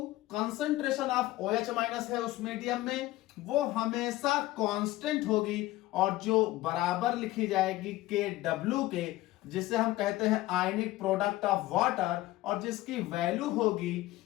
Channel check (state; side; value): quieter; right; 17.1 dB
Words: concentration of OH minus है उस मीडियम में, वो हमेशा कांस्टेंट होगी और जो बराबर लिखी जाएगी KW के, जिसे हम कहते हैं आयनिक प्रोडक्ट ऑफ वाटर, और जिसकी वैल्यू होगी